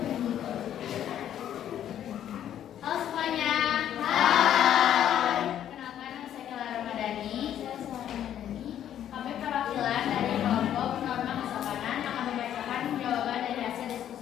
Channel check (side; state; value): right; quieter; 10.6 dB